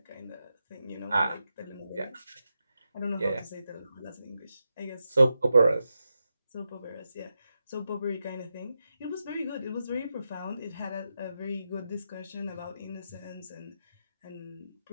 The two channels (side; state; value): both; inverted; correlation -0.88